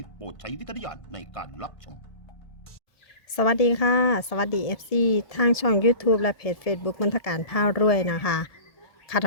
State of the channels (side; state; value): right; late; 1.7 ms